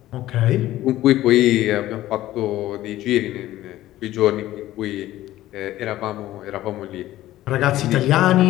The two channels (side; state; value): right; quieter; 14.9 dB